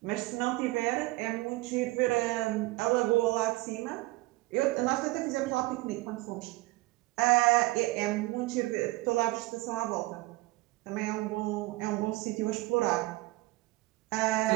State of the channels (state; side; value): quieter; left; 20.7 dB